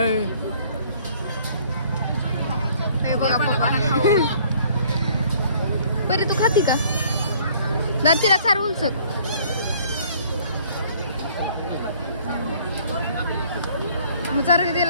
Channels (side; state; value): both; inverted; correlation -0.58